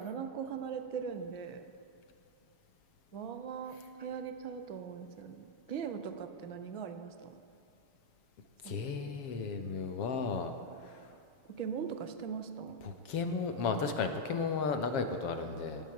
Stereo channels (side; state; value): right; late; 7.3 ms